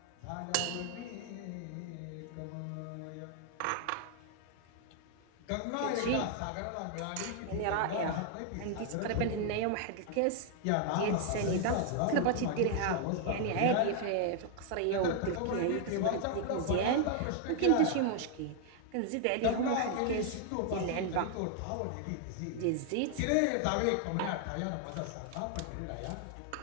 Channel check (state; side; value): different; both; correlation 0.00